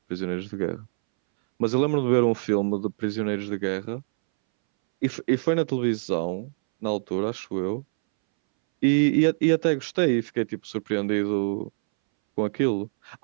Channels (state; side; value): silent; left; 62 dB below the other